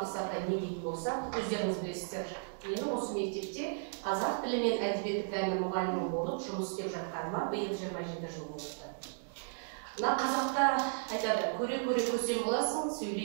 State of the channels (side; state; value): left; silent; digital silence